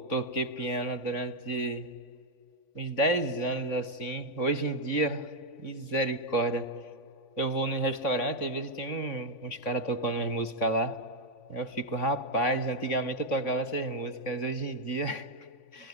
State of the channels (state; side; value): late; right; 3.5 ms